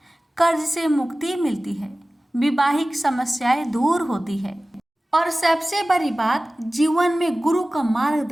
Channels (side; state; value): both; normal; correlation 0.97